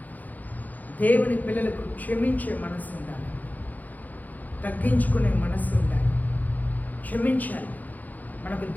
దేవుని పిల్లలకు క్షమించే మనసు ఉండాలి, తగ్గించుకునే మనసు ఉండాలి, క్షమించాలి. మనకు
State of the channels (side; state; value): right; late; 0.082 ms